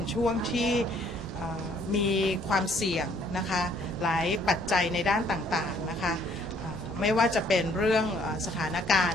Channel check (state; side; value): normal; both; correlation 0.63